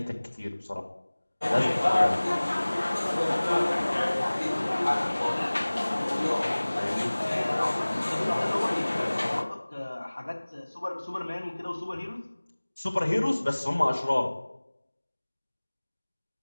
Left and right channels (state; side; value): inverted; both; correlation -1.00